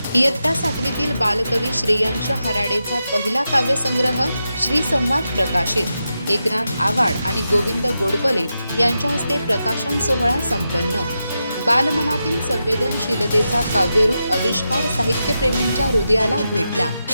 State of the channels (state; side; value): inverted; both; correlation -0.88